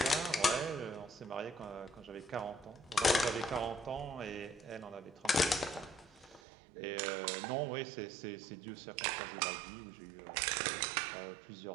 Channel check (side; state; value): left; drops out; at 6.4 s